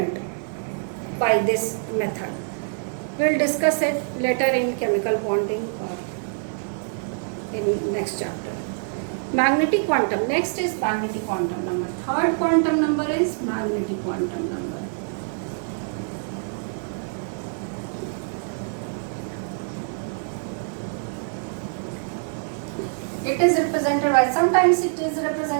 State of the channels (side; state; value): left; silent; digital silence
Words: by this method. We will discuss it later in chemical bonding or in next chapter. Magnetic quantum. Next is magnetic quantum number. Third quantum number is magnetic quantum number. It is represented by, sometimes it is